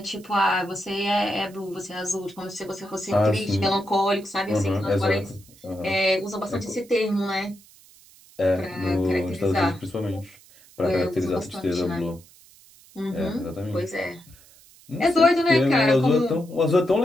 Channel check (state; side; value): noise; right; hiss, 25 dB below the sound